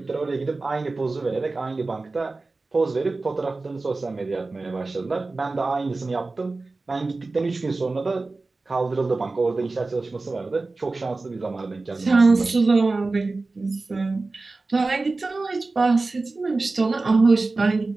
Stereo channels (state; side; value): quieter; left; 3.5 dB